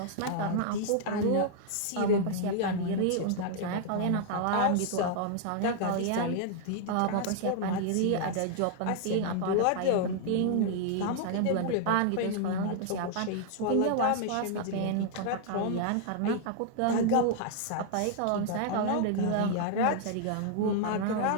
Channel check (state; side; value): different; both; correlation -0.01